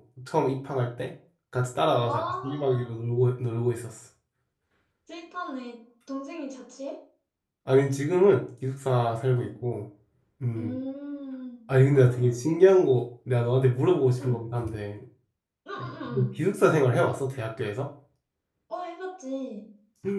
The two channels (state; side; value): identical; both; correlation 1.00